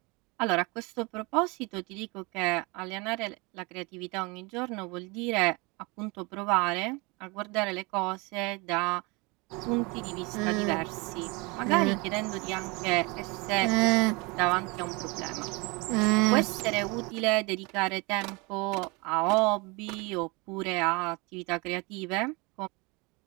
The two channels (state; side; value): quieter; left; 27.3 dB